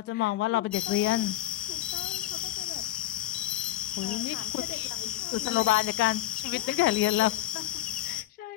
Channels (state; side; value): quieter; right; 14.6 dB